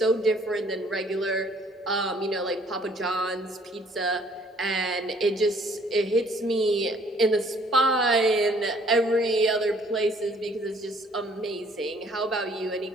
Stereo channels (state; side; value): normal; both; correlation 0.60